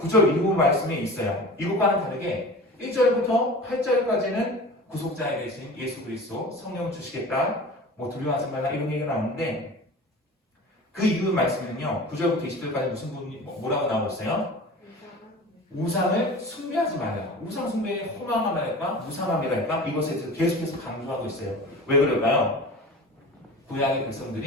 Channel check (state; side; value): normal; both; correlation 0.36